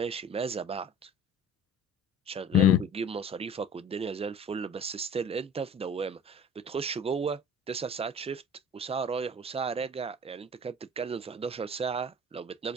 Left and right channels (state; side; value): normal; both; correlation 0.44